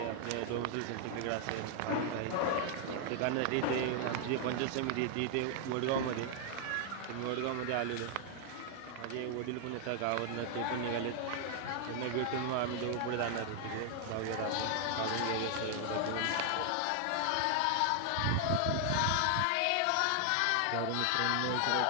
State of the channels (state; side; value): different; both; correlation 0.00